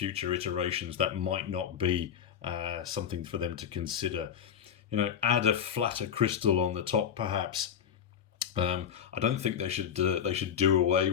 iterations that might not be something for them to consider. Add a flatter crystal on the top, perhaps. I don't think they should do away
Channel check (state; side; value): quieter; right; 8.4 dB